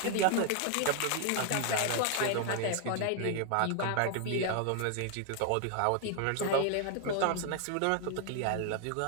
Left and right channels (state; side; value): different; both; correlation 0.00